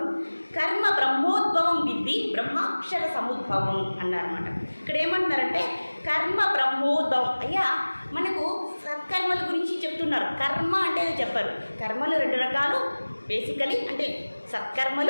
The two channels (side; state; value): both; inverted; correlation -1.00